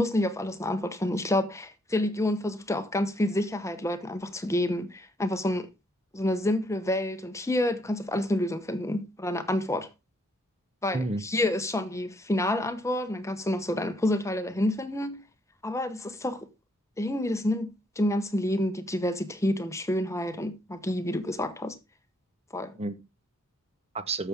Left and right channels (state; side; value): normal; both; correlation 0.72